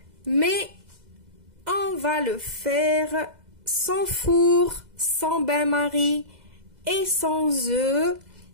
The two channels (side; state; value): left; late; 2.0 ms